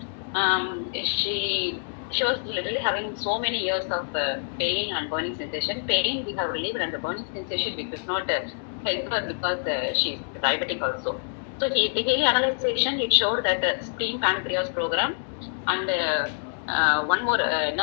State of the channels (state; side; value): silent; right; digital silence